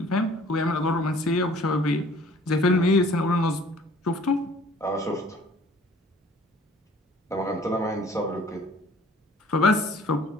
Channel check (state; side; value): normal; both; correlation 0.53